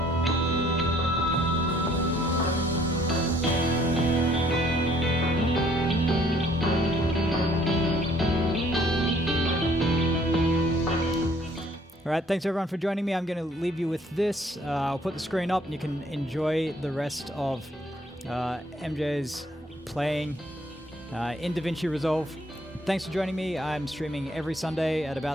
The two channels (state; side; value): normal; both; correlation 0.62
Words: All right, thanks everyone for joining me. I'm going to leave you with this. I'll put the screen up and you can enjoy the rest of MJ's playing in DaVinci Resolve. Thanks for joining me. I'm streaming every Sunday at